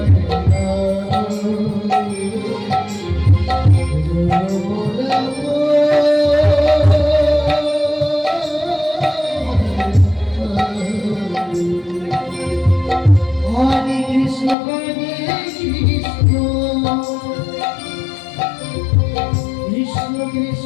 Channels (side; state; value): right; drops out; at 14.6 s